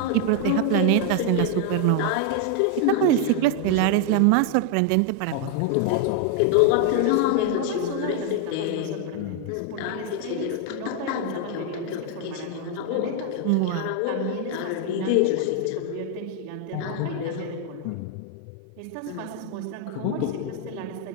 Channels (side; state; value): both; different; correlation 0.00